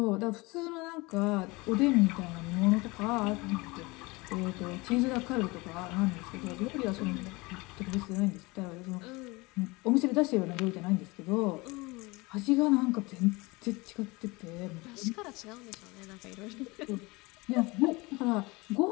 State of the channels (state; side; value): quieter; right; 24.2 dB